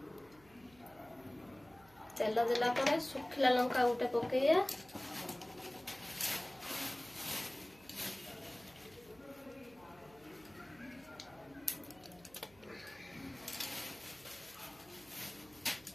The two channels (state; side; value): noise; right; hum, 26 dB below the sound